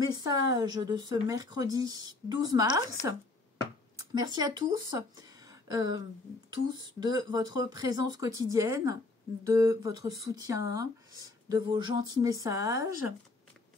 de ce mercredi 12 mars. Merci à tous, de votre présence quotidienne, de votre soutien, de vos gentils messages.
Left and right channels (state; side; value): quieter; right; 3.2 dB